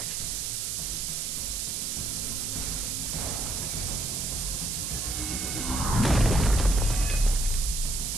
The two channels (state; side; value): noise; right; hiss, 2 dB below the sound